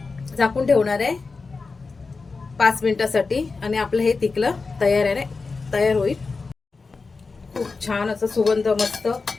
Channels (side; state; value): right; quieter; 4.2 dB